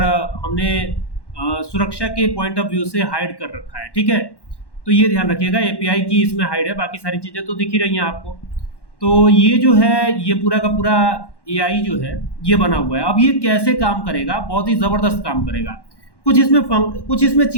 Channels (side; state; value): right; late; 1.1 ms